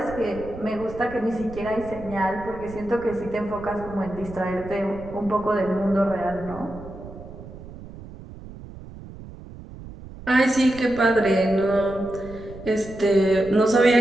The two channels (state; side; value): noise; right; rumble, 15 dB below the sound